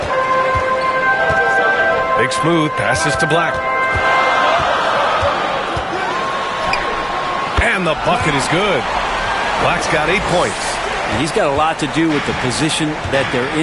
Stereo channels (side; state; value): both; identical; correlation 1.00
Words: Big Smooth passes to Black. And the bucket is good. Black's got 8 points. And he's got a lot to do with the position that they're